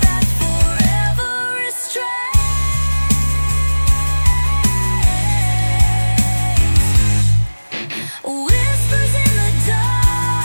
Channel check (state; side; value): inverted; both; correlation -1.00